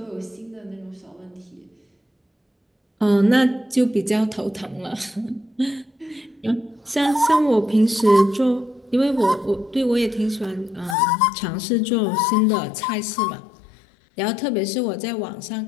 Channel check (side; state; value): right; drops out; at 11.0 s